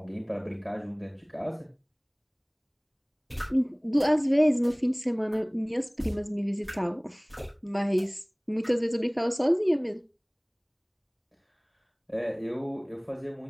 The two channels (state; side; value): identical; both; correlation 1.00